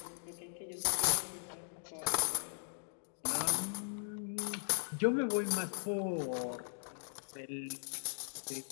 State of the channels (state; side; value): silent; right; digital silence